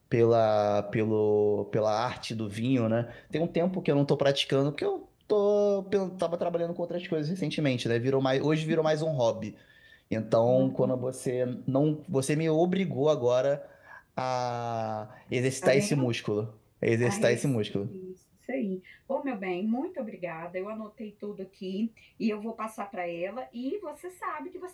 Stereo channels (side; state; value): both; identical; correlation 1.00